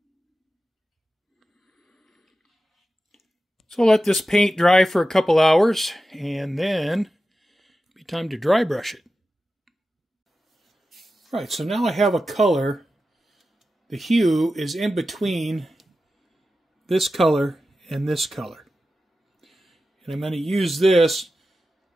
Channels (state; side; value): normal; both; correlation 0.93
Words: So I'll let this paint dry for a couple hours, and then it'll be time to dry brush it. All right, so now I have a color. The hue is in between this color and this color. And I'm going to use this